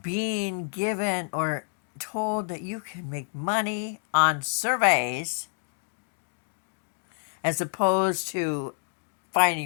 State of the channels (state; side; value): silent; right; 59 dB below the other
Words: being given or told that you can make money on surveys as opposed to